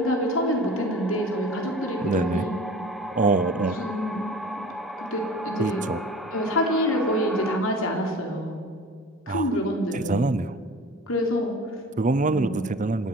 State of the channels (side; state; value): both; normal; correlation 0.40